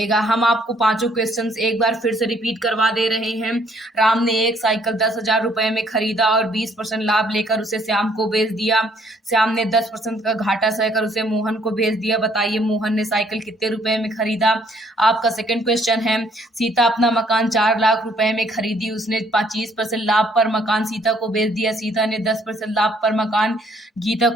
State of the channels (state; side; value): normal; both; correlation 0.65